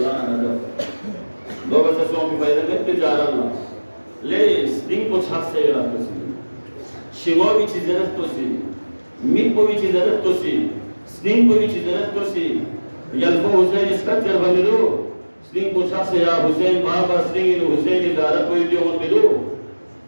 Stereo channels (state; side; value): inverted; both; correlation -1.00